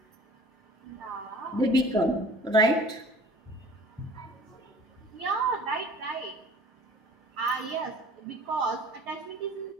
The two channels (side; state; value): both; normal; correlation 0.47